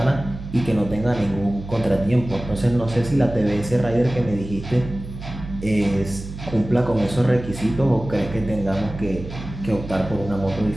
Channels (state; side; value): noise; right; hum, 11 dB below the sound